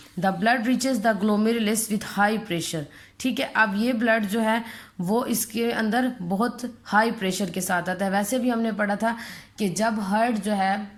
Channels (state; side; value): identical; both; correlation 1.00